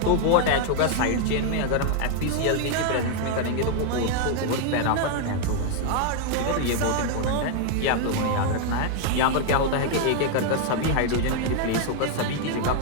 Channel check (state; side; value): different; both; correlation 0.00